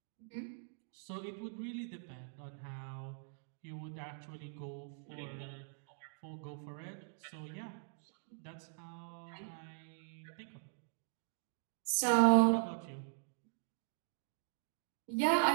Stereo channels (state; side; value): silent; left; digital silence